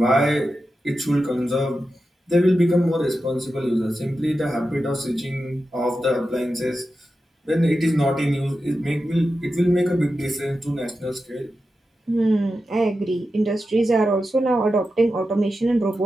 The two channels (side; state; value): both; normal; correlation 0.91